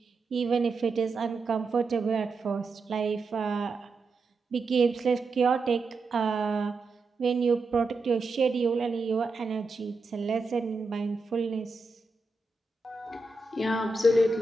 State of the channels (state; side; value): quieter; left; 3.6 dB